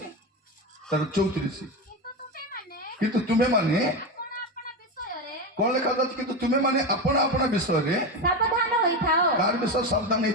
ତାର 34 କିନ୍ତୁ ତୁମେ ମାନେ କଣ ଲେଖା ଯାଉଛି କିନ୍ତୁ ତୁମେ ମାନେ ଆପଣା ଆପଣା ବିଷୟରେ ସାବଧାନ ହୋଇଥାଅ। କାହାର ବିଷୟ ସାବଧାନ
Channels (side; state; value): both; normal; correlation 0.16